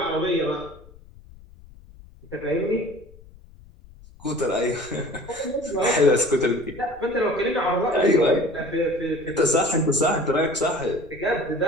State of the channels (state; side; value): noise; left; rumble, 22 dB below the sound